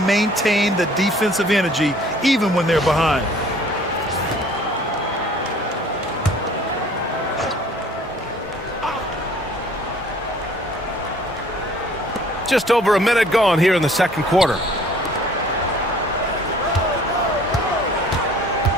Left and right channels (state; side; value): normal; both; correlation 0.54